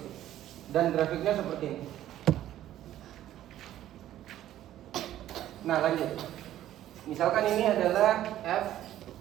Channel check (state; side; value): quieter; left; 12.8 dB